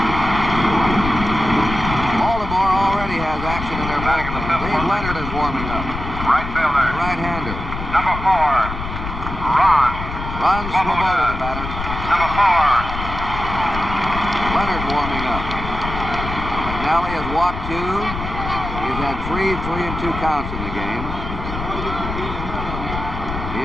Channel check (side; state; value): left; noise; rumble, 7 dB below the sound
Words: Baltimore already has action in their bullpen. Dave Leonard is warming up. Right fielder. Right-hander. Number 4. Ron Swoboda, the batter. Number 4. Leonard warming up. McNally has walked 2. He's had 3 3-2 counts in the game.